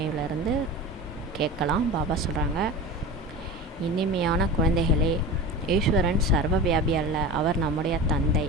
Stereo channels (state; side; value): normal; both; correlation 0.30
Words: கேட்கலாம். பாபா சொல்கிறாங்க, இனிமையான குழந்தைகளே, ஈஸ்வரன் சர்வ வியாபி அல்ல, அவர் நம்முடைய தந்தை